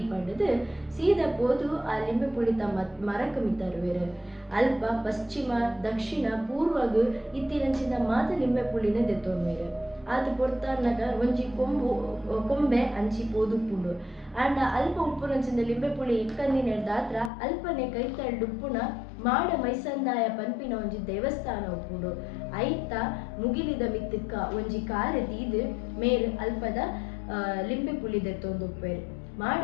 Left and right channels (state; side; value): drops out; right; at 17.3 s